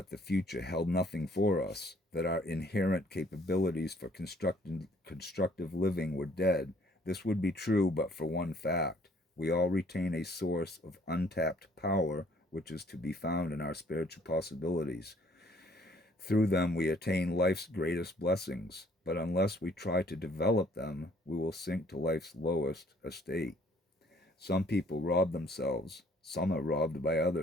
the future held nothing for us, that our inherent capabilities for constructive living were dead. This would be true but for one fact. We all retain a source of untapped power which is to be found in our spiritual possibilities. Through them we attain life's greatest blessings, but unless we try to develop them, we will sink to life's lowest estate. Some people rob themselves, some are robbed by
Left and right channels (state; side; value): normal; both; correlation 0.61